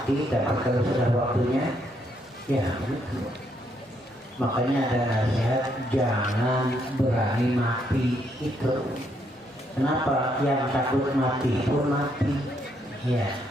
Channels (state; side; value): normal; both; correlation 0.74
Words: tapi kalau sudah waktunya, ya. Makanya ada nasihat, jangan berani mati itu. Kenapa? Yang takut mati pun mati. Ya,